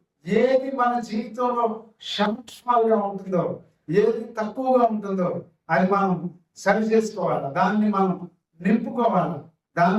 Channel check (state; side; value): identical; both; correlation 1.00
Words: ఏది మన జీవితంలో సంక్షేమాలుగా ఉంటుందో, ఏది తక్కువగా ఉంటుందో అది మనం సరి చేసుకోవాలి. దాన్ని మనం నింపుకోవాలి,